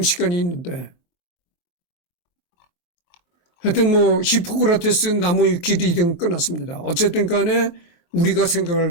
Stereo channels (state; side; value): late; right; 23 ms